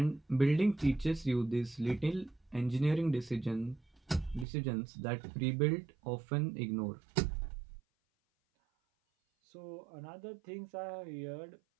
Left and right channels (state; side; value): drops out; left; at 4.5 s